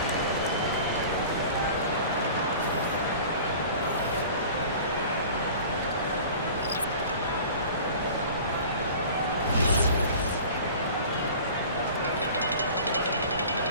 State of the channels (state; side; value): inverted; both; correlation -0.42